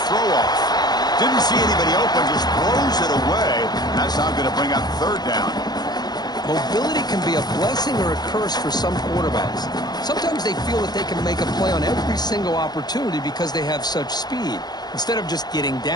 throw off. Didn't see anybody open, just throws it away. That's now going to bring up third down. Mobility can be a blessing or a curse for some quarterbacks. Sometimes they feel that they can make a play on every single opportunity because they have such speed. Instead of just getting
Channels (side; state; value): right; late; 0.20 ms